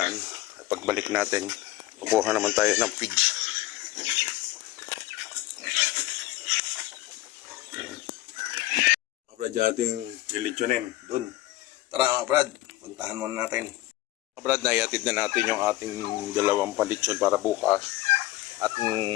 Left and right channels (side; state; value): right; quieter; 16.8 dB